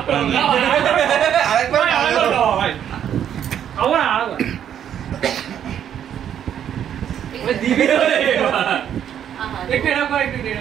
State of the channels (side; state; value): left; quieter; 9.6 dB